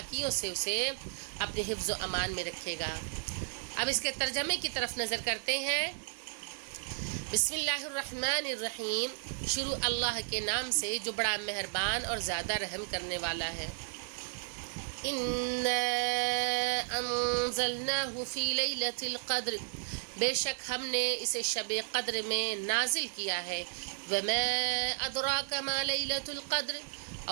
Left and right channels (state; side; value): silent; left; 55 dB below the other